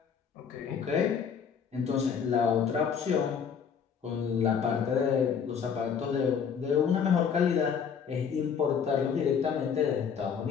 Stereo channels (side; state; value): right; quieter; 7.0 dB